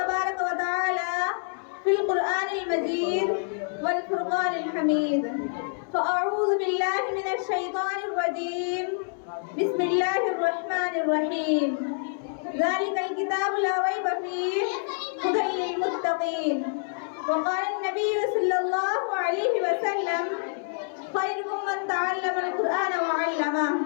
و تعالی فی القرآن المجید والفرقان الحمید، فاعوذ باللہ من الشیطان الرجیم، بسم اللہ الرحمن الرحیم۔ ذالک الکتاب لا ریب فیہ ھدی للمتقین۔ وقال النبی صلی اللہ علیہ وسلم خیرکم من تعلم القرآن وعلمہ۔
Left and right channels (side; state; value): right; silent; digital silence